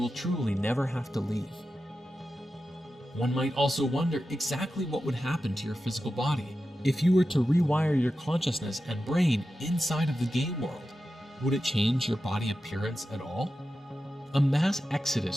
truly never have to leave. One might also wonder exactly what would happen to your physical body if you were to rewire your consciousness and brain inside of the game world. Would it change your body appearance at all? A mass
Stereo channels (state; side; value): normal; both; correlation 0.92